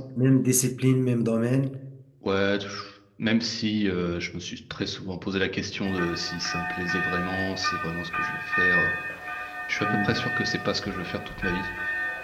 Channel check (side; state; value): both; identical; correlation 1.00